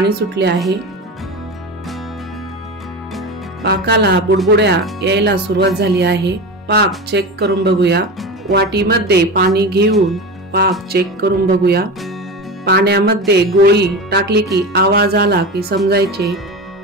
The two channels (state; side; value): normal; both; correlation 0.26